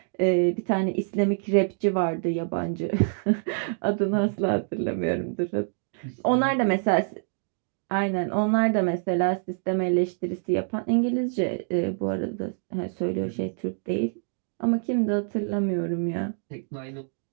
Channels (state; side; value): silent; left; 61 dB below the other